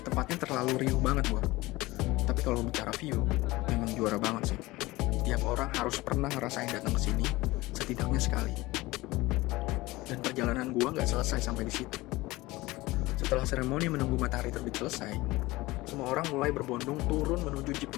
Tempatnya terlalu riuh banget gua. Tapi kalau bicara view, memang juara banget sih. Tiap orang harus pernah ngerasain datang ke sini setidaknya sekali. Dan perjalanan gua gak selesai sampai di situ. Setelah seremoni menunggu matahari terbit selesai, semua orang mulai berbondong turun menuju jeep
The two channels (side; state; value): right; quieter; 20.1 dB